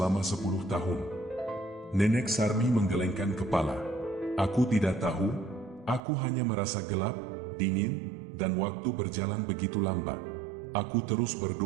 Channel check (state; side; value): drops out; left; at 6.0 s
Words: 10 tahun? Nenek Sarmi menggelengkan kepala. Aku tidak tahu, aku hanya merasa gelap, dingin, dan waktu berjalan begitu lambat. Aku terus